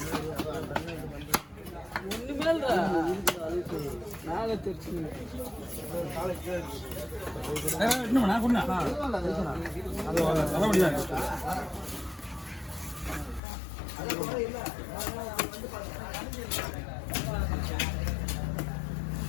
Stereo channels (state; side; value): drops out; right; at 13.4 s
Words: இன்னும் நான் கொண்டா தலைவலியா இருக்கு.